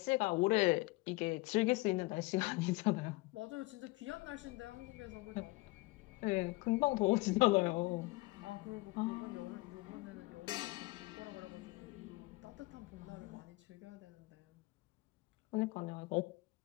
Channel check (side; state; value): right; quieter; 22.9 dB